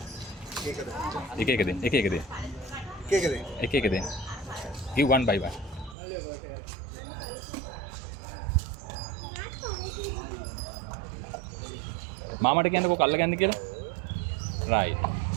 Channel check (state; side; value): drops out; left; at 6.0 s